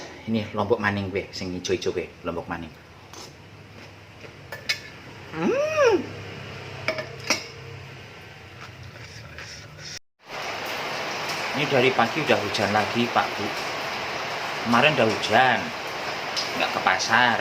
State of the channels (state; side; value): identical; both; correlation 1.00